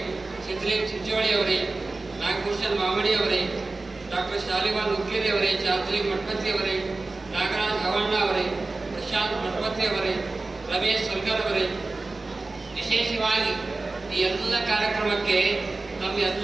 ಸಿದ್ಧಲಿಂಗ್ ಚಿಂಚೋಳಿ ಅವರೇ, ನಾಗಭೂಷಣ್ ಮಾಮಡಿ ಅವರೇ, ಡಾಕ್ಟರ್ ಶಾಲಿವಾನ್ ಉಕ್ಕೇರಿ ಅವರೇ, ಚಾರ್ಜಲಿಂಗ್ ಮಠಪತಿ ಅವರೇ, ನಾಗರಾಜ್ ಹವಣ್ಣ ಅವರೇ, ಪ್ರಶಾಂತ್ ಮಠಪತಿ ಅವರೇ, ರಮೇಶ್ ಸಲ್ಗರ್ ಅವರೇ, ವಿಶೇಷವಾಗಿ ಈ ಎಲ್ಲ ಕಾರ್ಯಕ್ರಮಕ್ಕೆ ತಮ್ಮ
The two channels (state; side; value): quieter; left; 3.4 dB